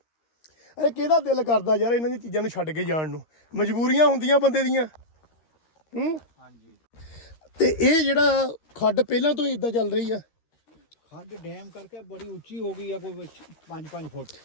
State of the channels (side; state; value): right; late; 13 ms